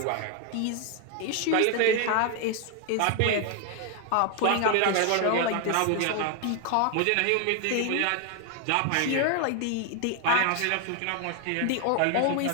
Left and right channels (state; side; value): different; both; correlation 0.01